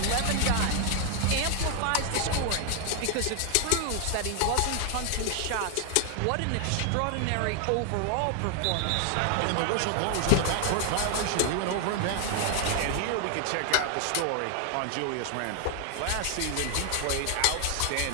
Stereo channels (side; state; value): both; different; correlation 0.00